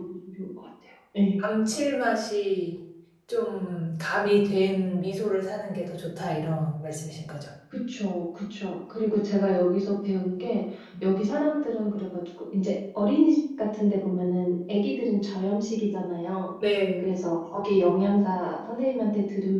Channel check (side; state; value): both; identical; correlation 1.00